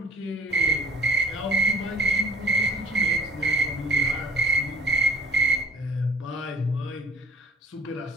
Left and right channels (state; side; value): normal; both; correlation 0.49